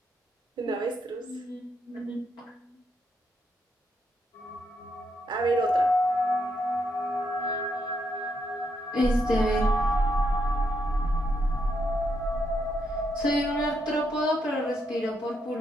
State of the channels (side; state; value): both; normal; correlation 0.79